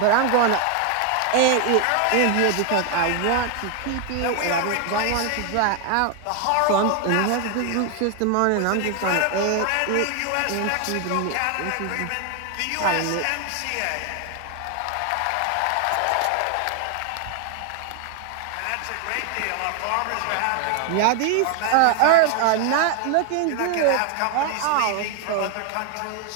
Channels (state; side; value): different; both; correlation 0.00